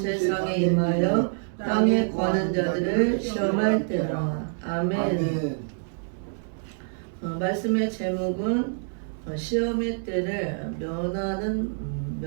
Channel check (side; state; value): left; silent; digital silence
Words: 임하여 땅에 거하는 자들을 시험할 때라. 아멘. 말씀의 제목은 시험의 때를